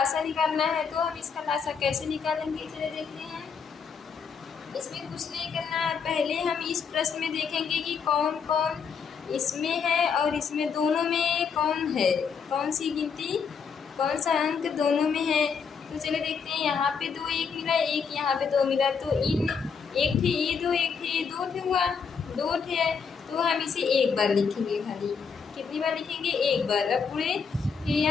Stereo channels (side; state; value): right; quieter; 6.1 dB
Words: निकालना है, तो हम इसका लासा कैसे निकालेंगे चलिए देखते हैं। इसमें कुछ नहीं करना है, पहले हम इस प्रश्न में देखेंगे कि कौन कौन इसमें है और इसमें दोनों में कौन है, कौन सी गिनती कौन सा अंक दोनों में है। तो चलिए देखते हैं, यहाँ पे 2 1 मिला, एक यहाँ पे 2 मिला, तो इन एक थे ये 2, एक थे ये 2 थे हुआ 2 थे, तो हम इसे एक बार लिखेंगे। खाली कितनी बार लिखेंगे? एक बार। अब पूरे फिर